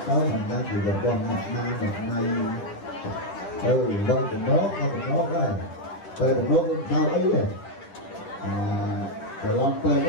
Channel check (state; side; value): late; right; 10 ms